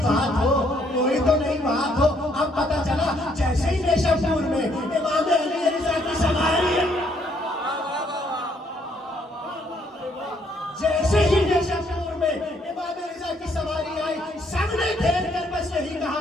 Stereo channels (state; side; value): normal; both; correlation 0.69